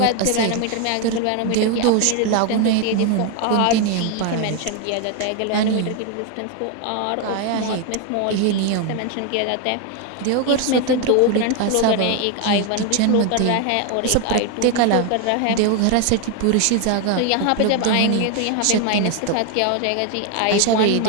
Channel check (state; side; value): different; both; correlation 0.01